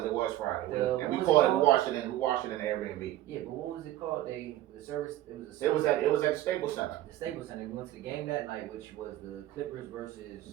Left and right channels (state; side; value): quieter; left; 14.6 dB